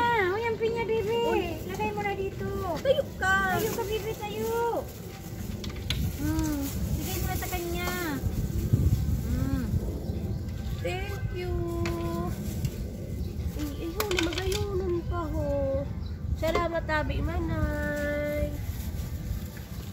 O yung pinya, Bibi. Lagay mo na dito. Tayo ka. Tayo ka, Bibi, tayo. Bigay mo na sa kanya. Thank you. Ay, ayaw na magayonon pa ho. Salamat tabi, manay.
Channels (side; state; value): both; identical; correlation 1.00